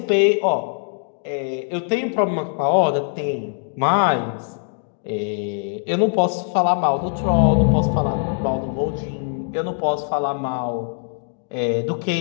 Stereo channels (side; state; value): right; silent; 64 dB below the other